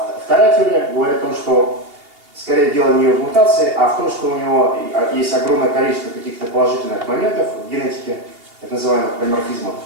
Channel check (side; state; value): left; late; 2.8 ms